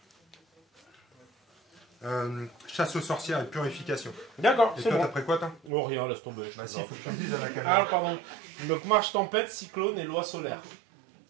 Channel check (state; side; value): drops out; left; at 5.7 s